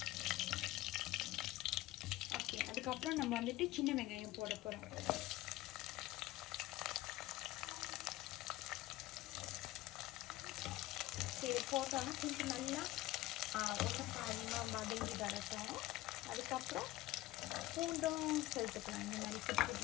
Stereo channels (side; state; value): right; quieter; 17.2 dB